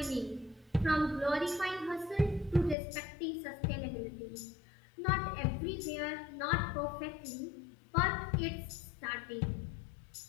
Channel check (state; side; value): drops out; right; at 2.8 s